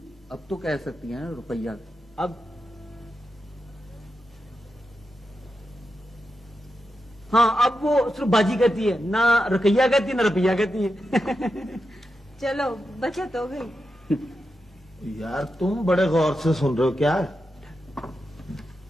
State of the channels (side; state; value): both; normal; correlation 0.88